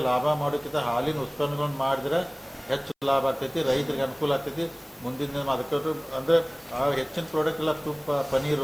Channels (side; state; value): both; identical; correlation 1.00